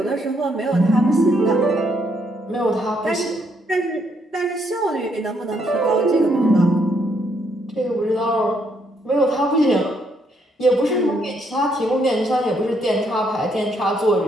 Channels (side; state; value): both; normal; correlation 0.73